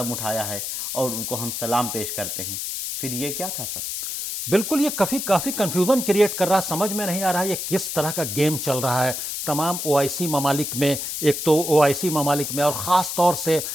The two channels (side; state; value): left; noise; hiss, 4 dB below the sound